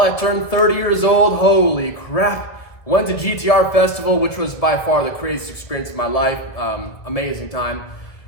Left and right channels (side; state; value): right; late; 1.7 ms